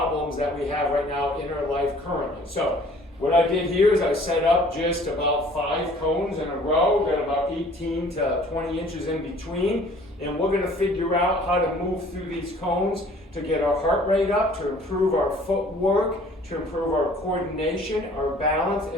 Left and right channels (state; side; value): normal; both; correlation 0.53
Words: that we have right now in our life currently. So, what I did here is I set up just about 5 cones in a row, got about 18 to 20 inches in between, and we're going to figure out how to move through these cones to get our heart rate up, to improve our footwork, to improve our coordination, our balance,